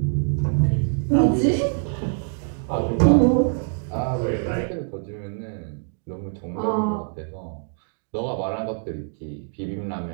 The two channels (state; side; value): silent; left; 59 dB below the other